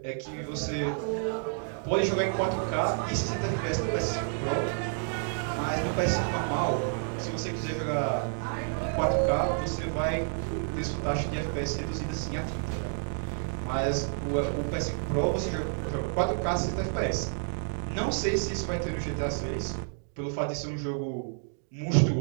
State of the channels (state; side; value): silent; left; 58 dB below the other